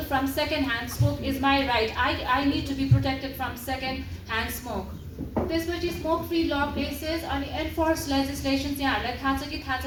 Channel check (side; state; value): both; identical; correlation 1.00